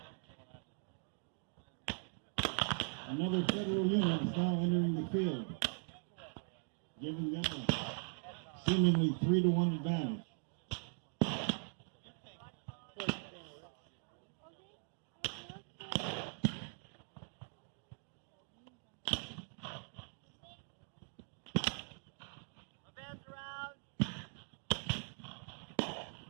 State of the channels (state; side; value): silent; left; 51 dB below the other